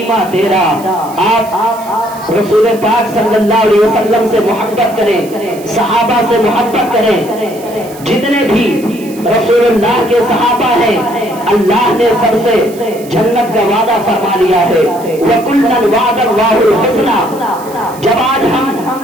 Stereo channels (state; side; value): noise; right; hiss, 19 dB below the sound